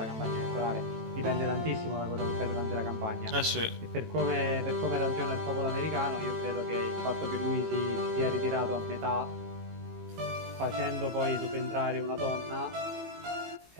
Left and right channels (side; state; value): left; late; 18 ms